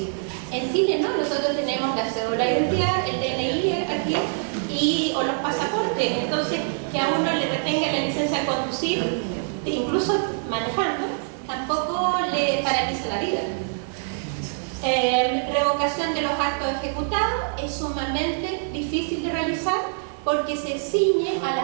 En Chile no, nosotros tenemos la cédula de identidad, el DNI aquí, o los pasaportes. Entonces, que a uno le retenga la licencia de conducir, incluso manejando, tampoco le paraliza la vida. Revocación de los actos ejecutados es sumamente difícil de realizar porque se ciñe a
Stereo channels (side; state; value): left; silent; 62 dB below the other